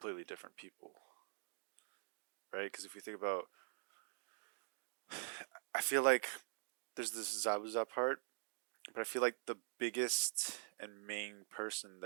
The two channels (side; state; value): left; silent; digital silence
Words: different people, right? Because if you think about, I feel like there's this Zabuza part, but I feel like the biggest and main person